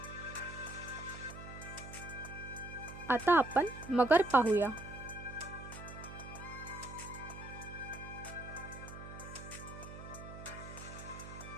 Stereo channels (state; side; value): noise; right; hum, 12 dB below the sound